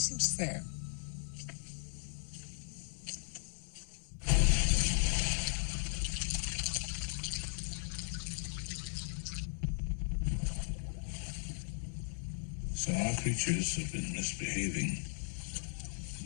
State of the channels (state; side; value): silent; right; digital silence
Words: fair. So our creatures have been misbehaving.